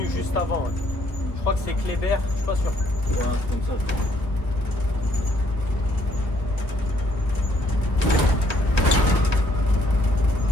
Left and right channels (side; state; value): right; late; 1.0 ms